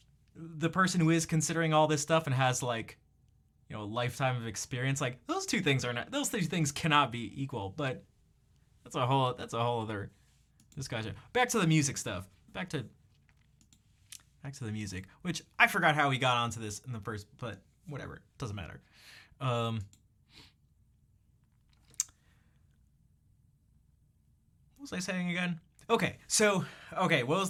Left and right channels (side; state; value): both; identical; correlation 1.00